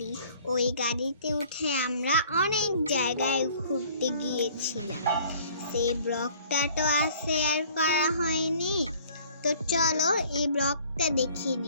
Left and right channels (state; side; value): inverted; both; correlation -0.53